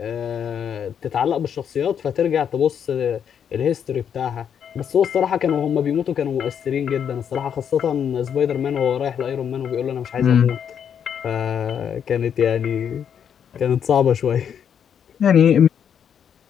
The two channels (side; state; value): right; quieter; 8.2 dB